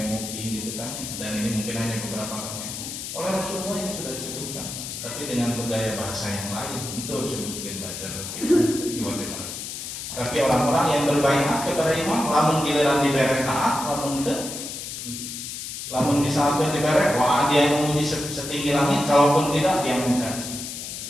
gitu kan. Dan ini mungkin hanya beberapa kali. Oleh Rasulullah ini sudah disebutkan, tapi dengan bergaya bahasa yang lain untuk disebutkan bajar. Tapi orang-orang yang berbaiat kepada imam, lamun giliran dibere taat, lamun misalkan dibere, wah dia memuji setinggi langit, kalaupun tidak dia mencaci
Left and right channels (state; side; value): noise; left; hiss, 7 dB below the sound